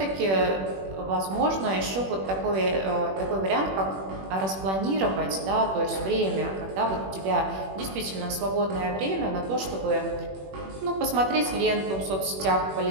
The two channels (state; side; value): late; left; 21 ms